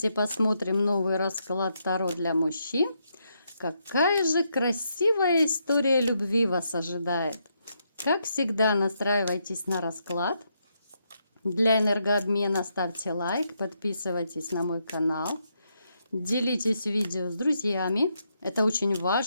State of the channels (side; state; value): both; inverted; correlation -0.79